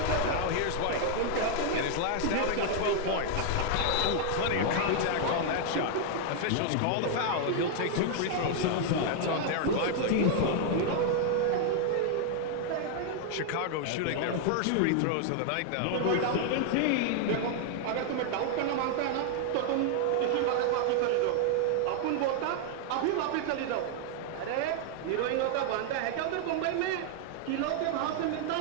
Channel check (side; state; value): both; different; correlation 0.00